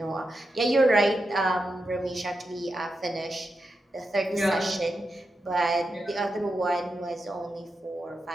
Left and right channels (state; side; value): normal; both; correlation 0.88